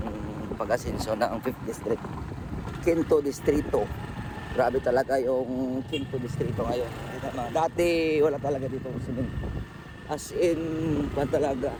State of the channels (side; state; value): both; identical; correlation 1.00